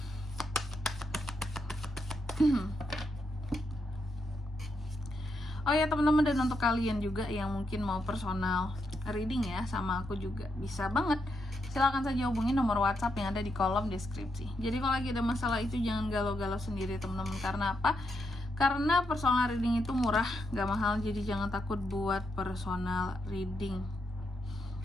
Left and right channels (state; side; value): normal; both; correlation 0.82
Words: Oh ya teman-teman, dan untuk kalian juga yang mungkin mau personal reading ya sama aku juga bisa banget. Silahkan saja hubungi nomor WhatsApp yang ada di kolom deskripsi. Jadi kalau lagi ada masalah itu jangan galau-galau sendiri teman-teman. Karena apa? Karena personal reading itu murah, gak mahal. Jadi jangan takut buat personal reading.